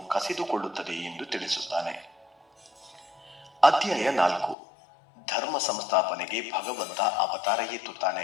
ಕಸಿದುಕೊಳ್ಳುತ್ತದೆ ಎಂದು ತಿಳಿಸುತ್ತಾನೆ. ಅಧ್ಯಾಯ 4. ಧರ್ಮ ಸಂಸ್ಥಾಪನೆಗೆ ಭಗವಂತ ಅವತಾರ ಎತ್ತುತ್ತಾನೆ.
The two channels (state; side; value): drops out; right; at 4.5 s